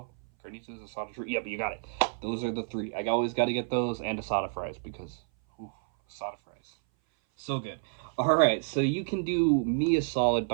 carnitas, asada, chorizo. Yeah, but you got it. Those are the three. I always got to get those and asada fries because, asada fries. So good. All right, so you can do me a solid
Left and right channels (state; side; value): silent; left; 57 dB below the other